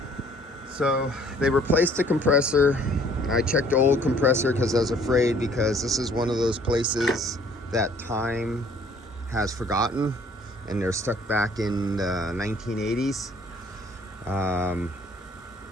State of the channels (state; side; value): normal; both; correlation 0.58